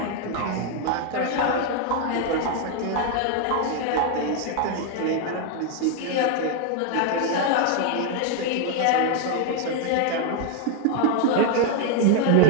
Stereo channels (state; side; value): different; both; correlation 0.01